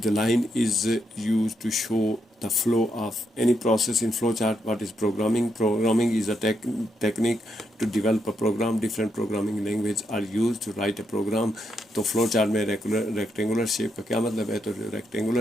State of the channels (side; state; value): both; normal; correlation 0.80